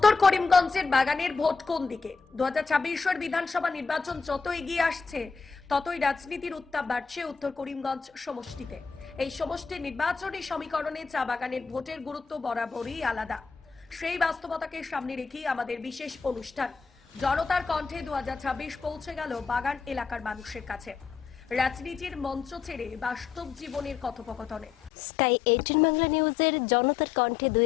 করিমগঞ্জের বাগানের ভোট কোন দিকে? 2026 বিধানসভা নির্বাচন যত এগিয়ে আসছে ততই রাজনীতির উত্তাপ বাড়ছে উত্তর করিমগঞ্জ সমষ্টিতে। এই সমষ্টির নির্বাচনী সমীকরণে চা বাগানের ভোটের গুরুত্ব বরাবরই আলাদা। সেই বাস্তবতাকে সামনে রেখেই আমাদের বিশেষ অনুষ্ঠান জনতার কণ্ঠে 2026 পৌঁছে গেল বাগান এলাকার মানুষের কাছে। রাজনীতির মঞ্চ ছেড়ে বাস্তব জীবনের কথোপকথনে স্কাই 18 বাংলা নিউজের জনতার কণ্ঠে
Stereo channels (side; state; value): right; quieter; 5.5 dB